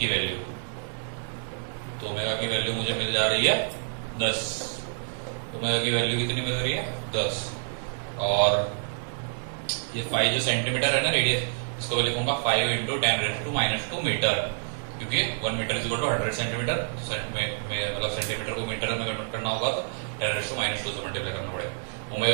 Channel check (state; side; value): silent; left; digital silence